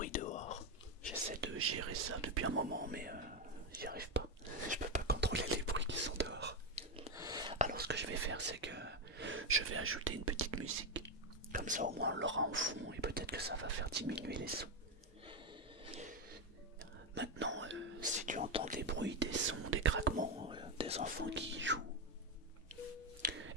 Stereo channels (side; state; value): both; normal; correlation 0.08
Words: dehors. J'essaie de gérer ça depuis un moment, mais j'y arrive pas. Je peux pas contrôler les bruits qui sont dehors. Alors ce que je vais faire, c'est que je vais ajouter une petite musique. Comme ça au moins on l'aura en fond et peut-être que ça va faire diminuer les sons. Maintenant, si tu entends des bruits, des sons, des craquements, des enfants qui jouent,